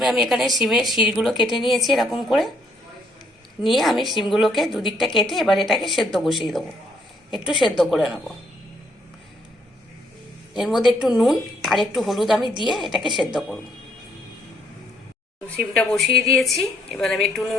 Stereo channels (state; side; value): normal; both; correlation 0.69